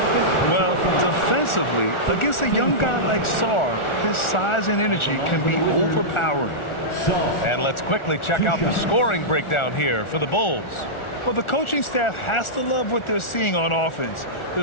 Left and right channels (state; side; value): late; right; 1.4 ms